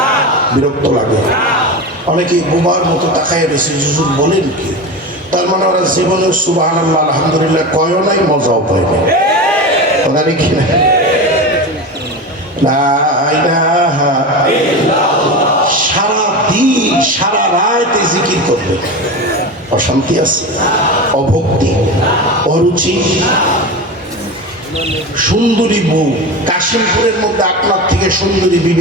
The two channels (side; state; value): both; normal; correlation 0.25